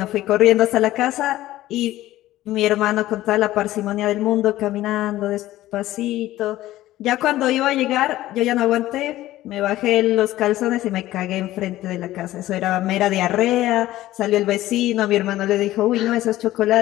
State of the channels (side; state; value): right; quieter; 15.4 dB